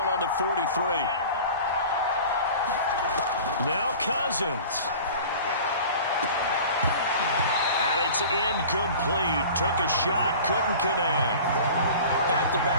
on the 43. Now Cousins. And it's incomplete. Took a shot, couldn't connect.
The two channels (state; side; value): inverted; both; correlation -0.40